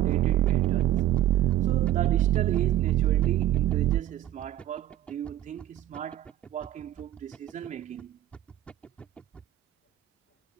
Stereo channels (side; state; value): left; quieter; 13.2 dB